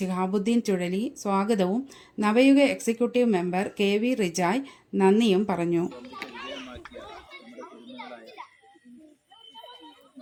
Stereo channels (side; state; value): both; identical; correlation 1.00